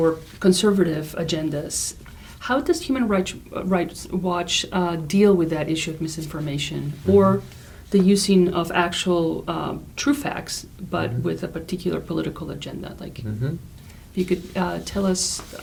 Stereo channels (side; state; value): both; identical; correlation 1.00